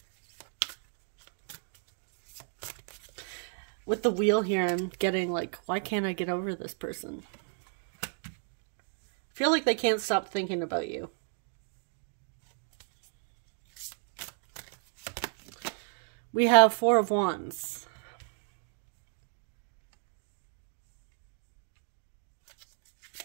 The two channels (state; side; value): silent; left; 55 dB below the other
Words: With the wheel here, I'm getting like, why can't I get over this person? I feel like they can't stop thinking about you. We have Four of Wands.